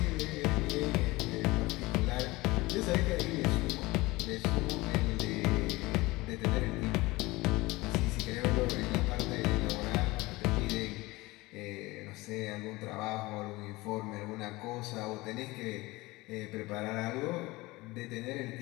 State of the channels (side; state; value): right; quieter; 21.2 dB